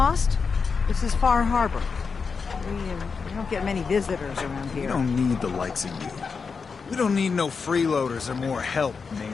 This is Far Harbor. We don't get many visitors around here. We don't need the likes of you. We don't need no freeloaders or more help,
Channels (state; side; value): quieter; right; 5.2 dB